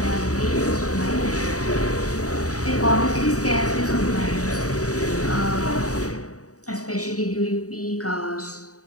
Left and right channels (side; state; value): right; late; 0.66 ms